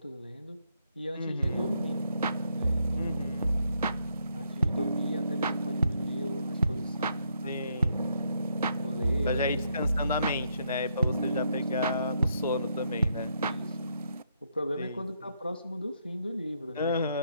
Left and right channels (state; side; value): inverted; both; correlation -0.75